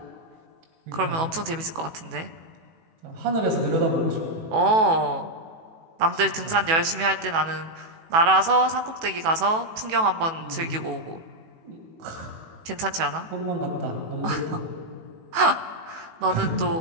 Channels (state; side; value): late; left; 18 ms